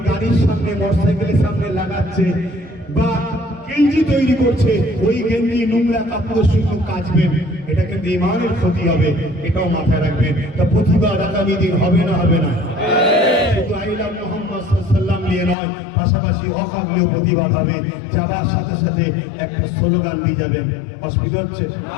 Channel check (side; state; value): right; drops out; at 15.6 s